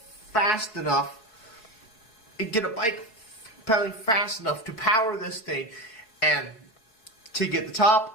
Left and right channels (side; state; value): right; late; 4.7 ms